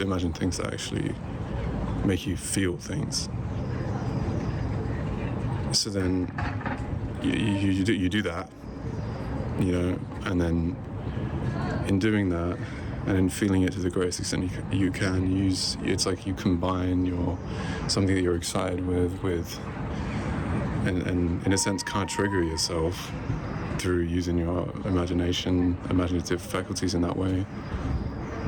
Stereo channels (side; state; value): both; identical; correlation 1.00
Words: imagine things that actually make you feel things. So then you do that, and then in doing that and in feeling it to the greatest extent you can use, it's like you combine something that you're excited with and in a sense can't trigger yourself through using your imaginative faculties in that way.